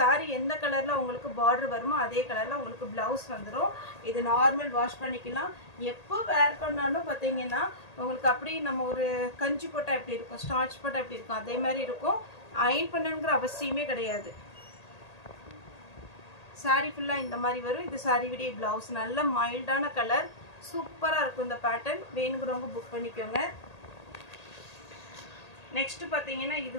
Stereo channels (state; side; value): late; right; 1.8 ms